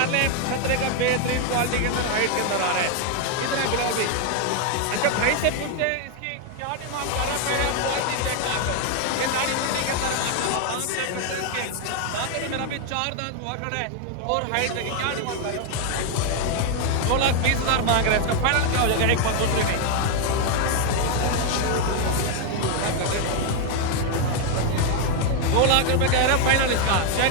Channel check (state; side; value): different; both; correlation 0.01